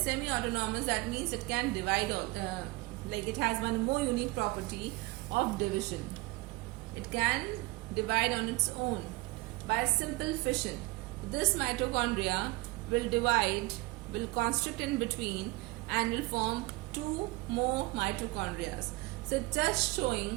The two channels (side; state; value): left; quieter; 22.3 dB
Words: that means it can divide, like it has one more unique property of division. It can divide on its own by simple fission. This mitochondria will divide, will constrict in between, and will form two more mitochondria. So just